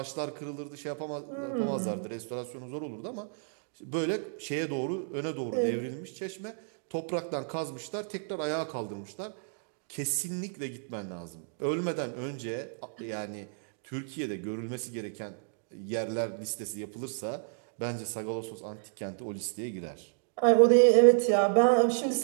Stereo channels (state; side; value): silent; left; digital silence